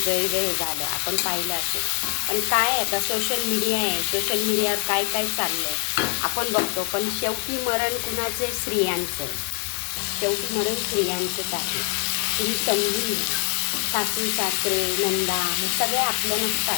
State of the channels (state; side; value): quieter; right; 35.0 dB